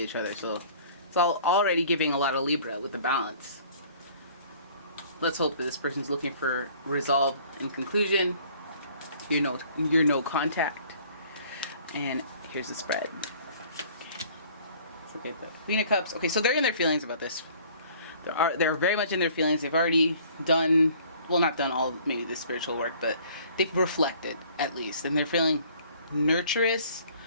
each other, so it's already giving a lot of Libra with the balance. Let's hope that this person's looking for resolve and conclusion. You're no contact. And here's the spread. Let's look at the Queen of Cups. Okay, so they're in their feelings about this. They're very much in their feelings. They've already done, well, not done all maybe the spiritual work, but they've reflected at least, and they're feeling nurturous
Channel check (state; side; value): inverted; both; correlation -0.53